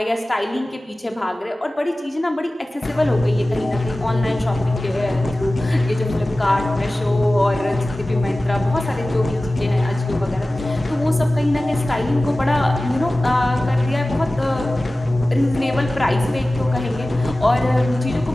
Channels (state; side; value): normal; both; correlation 0.97